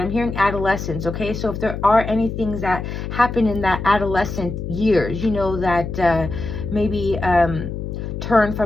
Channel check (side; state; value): left; noise; hum, 6 dB below the sound